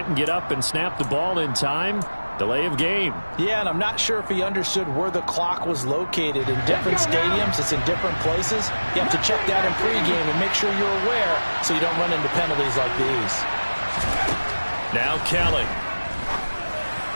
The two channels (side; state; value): both; inverted; correlation -1.00